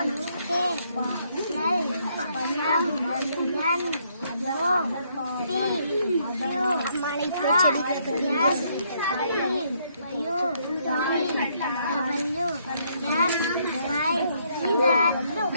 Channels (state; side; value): inverted; both; correlation -0.71